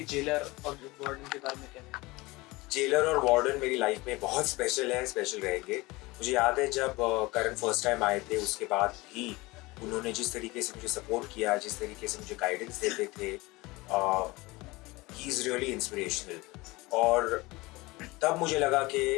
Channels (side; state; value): right; quieter; 22.1 dB